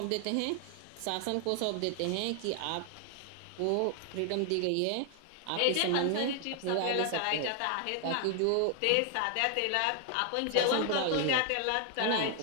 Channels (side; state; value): both; different; correlation 0.00